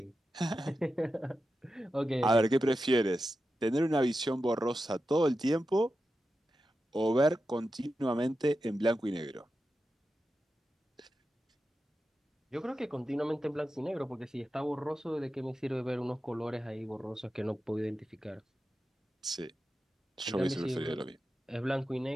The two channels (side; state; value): both; normal; correlation 0.91